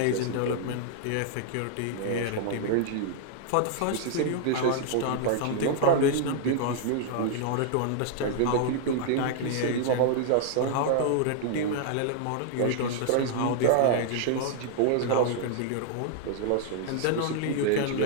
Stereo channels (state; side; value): different; both; correlation -0.01